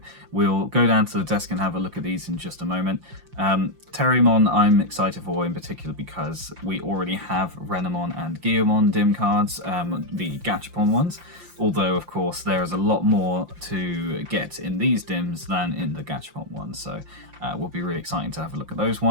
we'll go down to the desk and have a look at these in just a moment. Teriyamon I'm excited for in particular because we already have Renamon and Guillermo dim cards, the Gachapon ones, although of course there is a lot more to get in these dims than in the Gachapon ones, so will be really exciting to have a look at those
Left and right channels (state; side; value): late; left; 5.8 ms